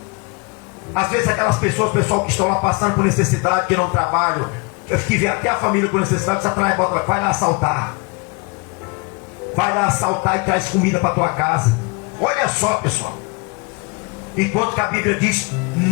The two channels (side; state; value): right; quieter; 29.1 dB